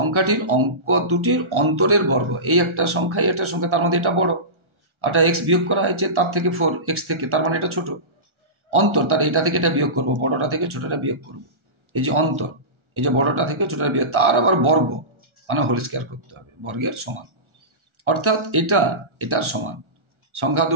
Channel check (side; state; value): left; late; 1.4 ms